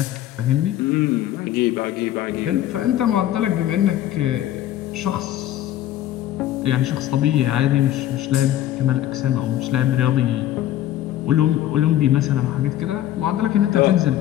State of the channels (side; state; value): right; quieter; 13.0 dB